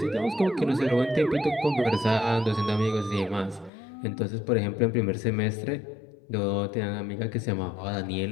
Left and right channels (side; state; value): right; drops out; at 3.7 s